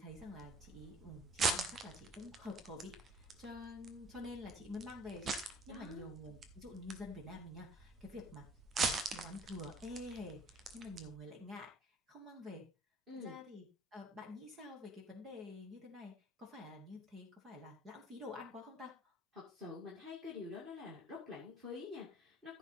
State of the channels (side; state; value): both; normal; correlation 0.54